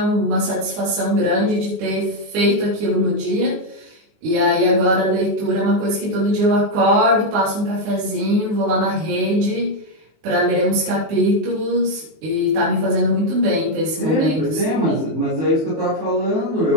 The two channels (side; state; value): left; late; 19 ms